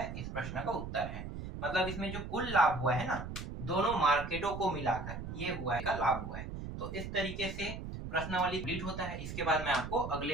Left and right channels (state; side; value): noise; right; rumble, 7 dB below the sound